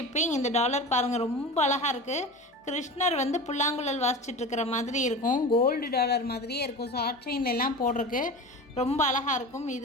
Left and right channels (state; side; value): normal; both; correlation 0.32